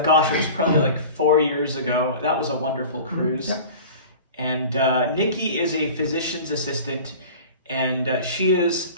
Gosh, it was probably like 4 years ago. That was a wonderful cruise. Yep. And Nikki is a physician's assistant, and she is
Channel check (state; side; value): inverted; both; correlation -0.39